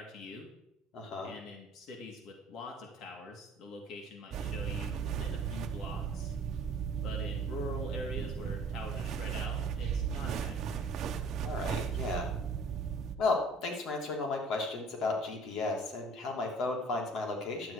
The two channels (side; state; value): both; normal; correlation 0.51